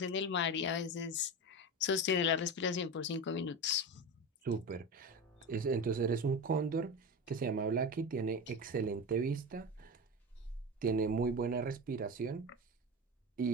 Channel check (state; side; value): normal; both; correlation 0.23